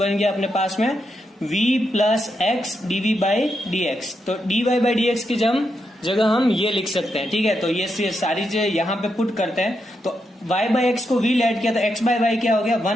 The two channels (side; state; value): both; normal; correlation 0.83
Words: गया अपने पास में v + x dv/dx। तो dy/dx की जगह हम ये लिख सकते हैं। ठीक है, तो ये सारी चीजें यहाँ पे पुट करते हैं। तो y/x को v लेट किया तो x/y क्या हो गया,